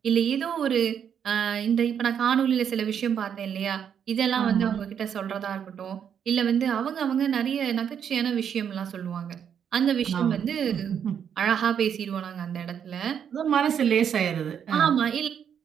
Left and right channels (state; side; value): quieter; left; 8.2 dB